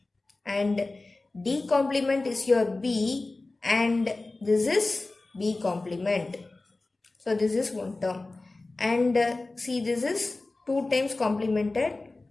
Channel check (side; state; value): right; quieter; 3.2 dB